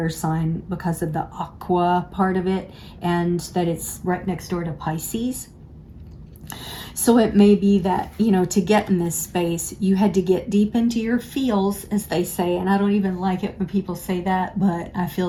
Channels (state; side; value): identical; both; correlation 1.00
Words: sign because of the aqua part of it, and that it's right next door to Pisces. So it may be that, to get in this space, you had to get deep into your feels, as they say. And I don't even like it when people say that, but I